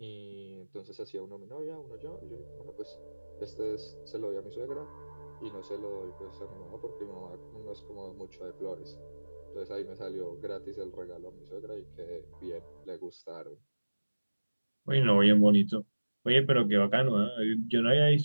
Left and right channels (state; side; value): inverted; both; correlation -1.00